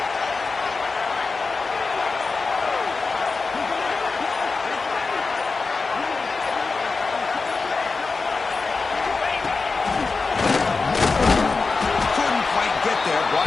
Couldn't quite get there. Brought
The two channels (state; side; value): quieter; right; 4.2 dB